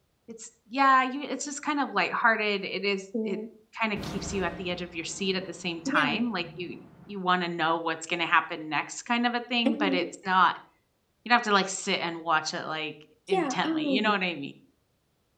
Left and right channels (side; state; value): both; identical; correlation 1.00